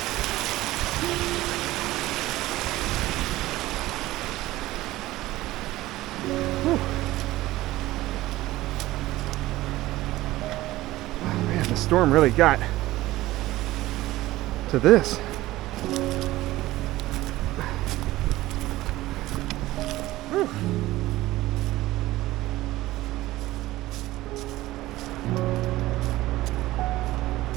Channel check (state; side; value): quieter; left; 17.1 dB